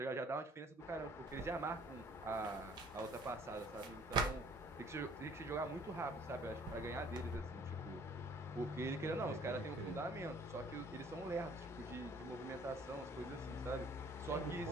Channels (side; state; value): both; normal; correlation 0.56